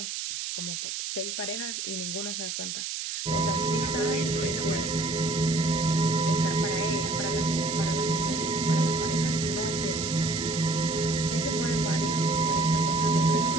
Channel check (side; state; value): right; noise; hiss, 4 dB below the sound